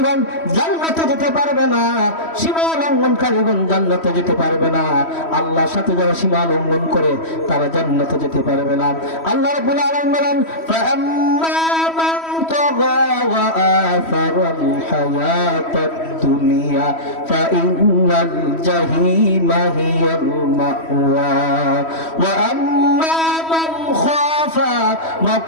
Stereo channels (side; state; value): right; late; 3.1 ms